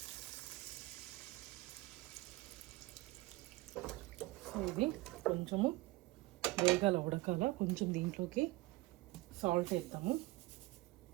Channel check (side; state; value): left; quieter; 20.2 dB